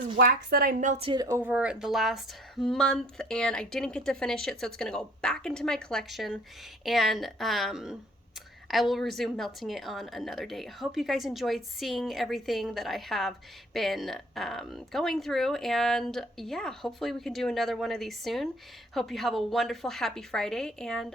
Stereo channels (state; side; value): normal; both; correlation 0.55